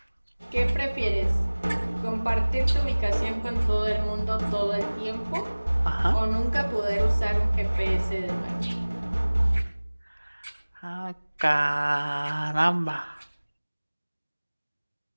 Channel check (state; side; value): inverted; both; correlation -1.00